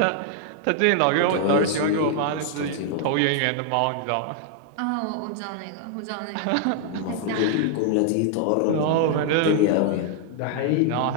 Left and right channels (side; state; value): both; different; correlation 0.00